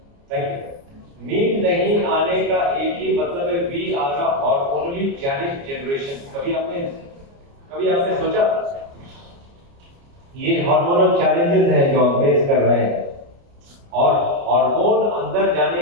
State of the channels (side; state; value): left; late; 29 ms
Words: थैंक यू। नींद नहीं आने का एक ही मतलब है, we are a hormonally challenged generation. कभी आपने सोचा ये हार्मोनल चैलेंजेस हैं जो हम फेस कर रहे हैं, और हार्मोन अंदर जाने